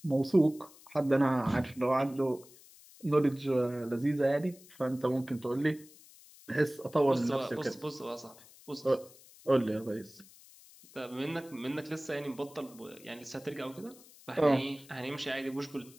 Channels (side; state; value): left; noise; hiss, 23 dB below the sound